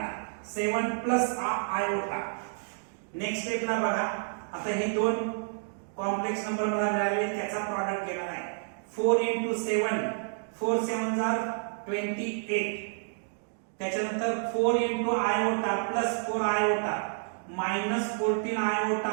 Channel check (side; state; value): left; silent; digital silence